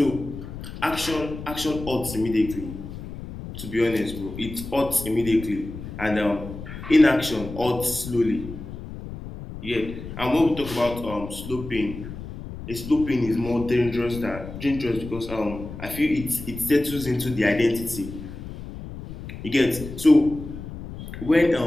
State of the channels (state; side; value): noise; left; rumble, 11 dB below the sound